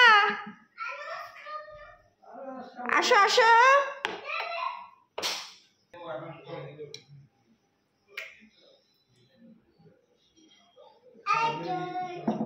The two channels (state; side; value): identical; both; correlation 1.00